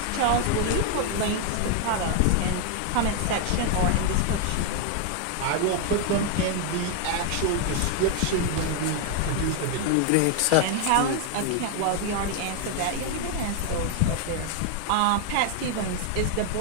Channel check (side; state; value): both; different; correlation 0.00